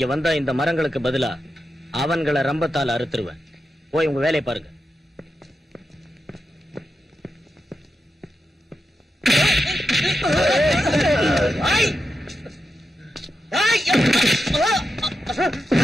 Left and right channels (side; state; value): both; normal; correlation 0.88